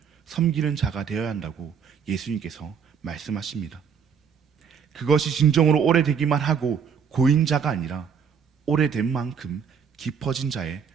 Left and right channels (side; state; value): left; quieter; 6.9 dB